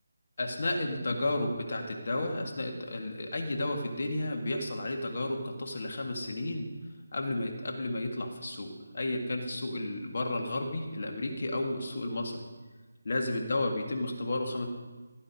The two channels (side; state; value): both; inverted; correlation -0.91